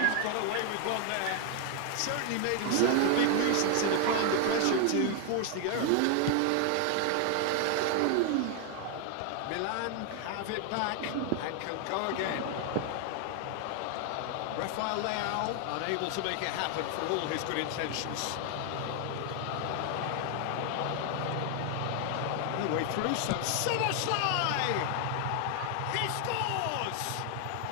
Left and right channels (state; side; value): different; both; correlation 0.00